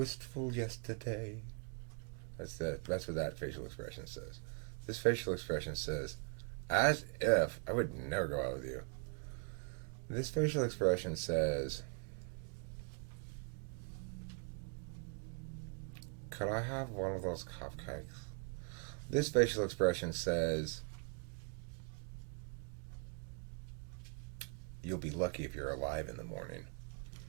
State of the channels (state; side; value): quieter; left; 36.7 dB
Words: yesterday. That's what that facial expression says. This facial expression says, as if I would never go out with you. This facial expression says, could I have one of those cupcakes? This facial expression says, you'll be lucky if you're alive in the morning.